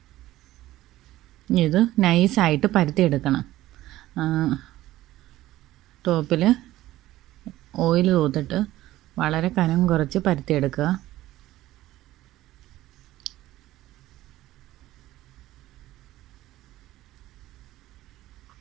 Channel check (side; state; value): left; quieter; 15.6 dB